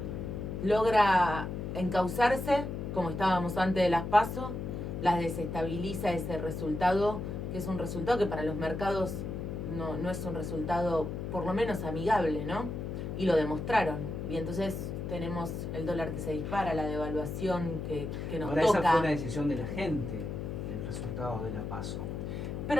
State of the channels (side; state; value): left; noise; hum, 5 dB below the sound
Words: logra encauzarse, como estábamos antes de las PASO, las desestabiliza ese resultado, que es un resultado que para los mercados no es un resultado por lo menos amigable, ¿no? Y lo demostraron. Y entonces tenemos el dólar que se dispara, la devaluación que nos Ahora, toca. esa fue una decisión de la gente, el resultado de la PASO.